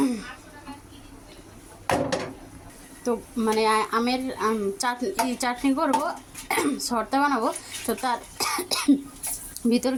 তো মানে আমের চাটনি করবো, শর্তা বানাবো। তো তার ভিতর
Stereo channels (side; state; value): both; identical; correlation 1.00